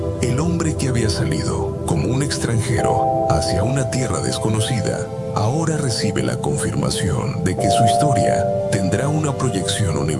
El hombre que había salido como un extranjero hacia una tierra desconocida, ahora recibe la confirmación de que su historia tendrá una proyección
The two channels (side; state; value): both; identical; correlation 1.00